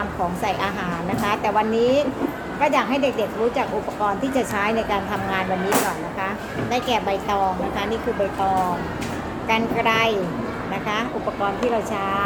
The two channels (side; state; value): both; identical; correlation 1.00